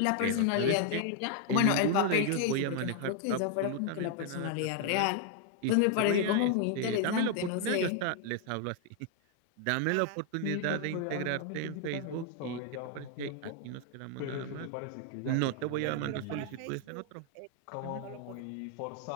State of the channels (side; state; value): both; different; correlation 0.00